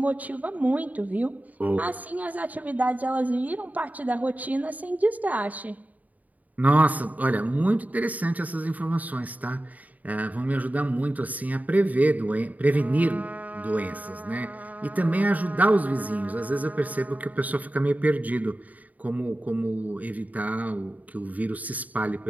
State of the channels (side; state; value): left; late; 0.075 ms